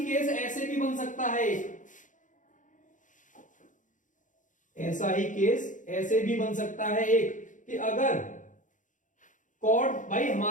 केस ऐसे भी बन सकता है, ऐसा ही केस ऐसे भी बन सकता है एक, कि अगर कॉर्ड भाई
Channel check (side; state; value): right; late; 0.37 ms